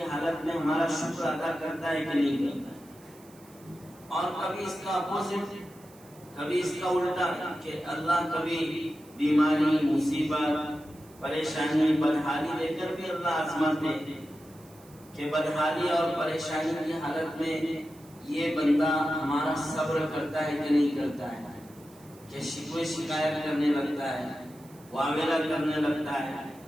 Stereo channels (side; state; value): right; noise; hiss, 25 dB below the sound